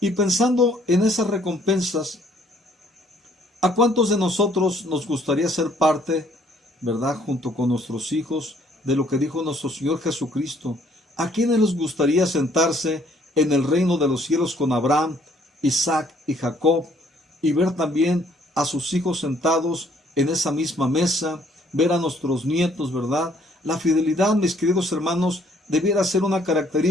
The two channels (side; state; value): both; normal; correlation 0.63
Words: Y pensando en esas recompensas, ¿a cuántos de nosotros nos gustaría ser parte, verdad, junto con nuestros hijos, de lo que dijo nuestro Señor Jesucristo? ¿A quiénes les gustaría sentarse en el reino de los cielos con Abraham, Isaac y Jacob, y ver también a sus hijos sentados en esa misma mesa, ver a nuestros nietos, verdad? La fidelidad, mis queridos hermanos, debiera ser una